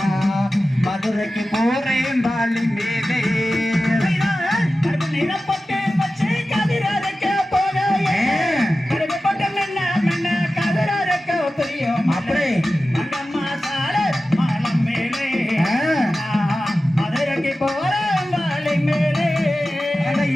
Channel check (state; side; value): normal; both; correlation 0.94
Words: மதுரைக்கு போறேன் வாலி மேலே அப்படி மங்கம்மா சால மாலை மேலே மதுரைக்கு போறேன் வாலி மேலே